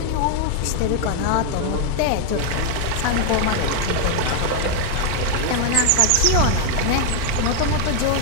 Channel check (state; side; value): different; both; correlation 0.01